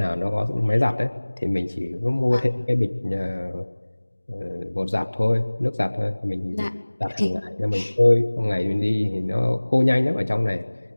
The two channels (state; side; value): inverted; both; correlation -1.00